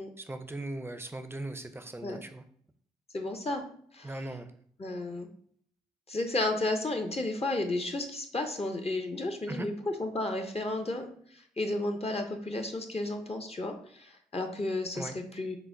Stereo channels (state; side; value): normal; both; correlation 0.72